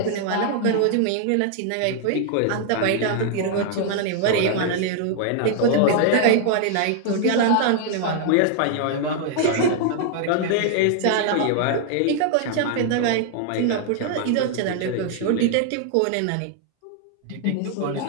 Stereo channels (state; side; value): different; both; correlation 0.00